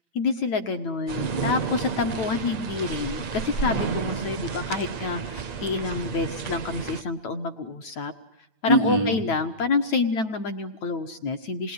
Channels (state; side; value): late; right; 9.2 ms